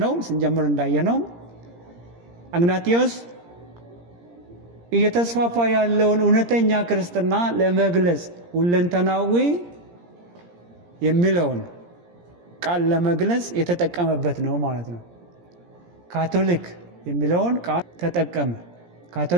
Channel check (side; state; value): left; late; 17 ms